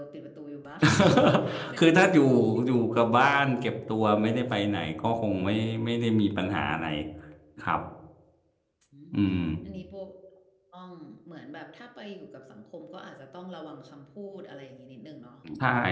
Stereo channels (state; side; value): identical; both; correlation 1.00